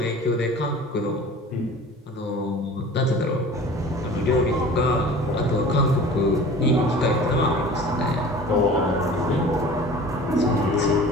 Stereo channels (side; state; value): both; normal; correlation 0.42